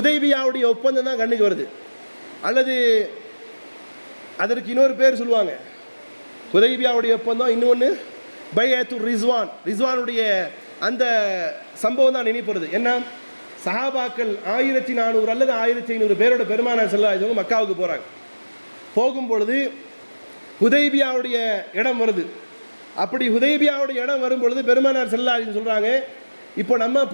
ஒப்பந்தம் தான் கண்ணுக்கு வருது. அல்லது அதற்கு இன்னொரு பேர் சொல்லுவாங்க, ஹுதைபியாவுடைய ஒப்பந்தம், இன்னொன்று பைஅத்துர் ரிஸ்வான், ரிஸ்வானுடைய அந்த சம்பவம் தான் நினைப்பது. என்ன, சஹாபாக்கள் 1400 அல்லது 1500 பேரோட பெருமானார் ஸல்லல்லாஹு அலைஹி வஸல்லம் மக்காவுக்கு போகிறாங்க. போகும்பொழுது ஹுதைபியாவுடைய இடம் வருது. அப்படி ஹுதைபியாவுடைய இடம் வரும் பொழுது பெருமானார் ஸல்லல்லாஹு அலைஹி வஸல்லம் சொல்கிறாங்க, இப்போ நம்ம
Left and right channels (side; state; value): both; inverted; correlation -1.00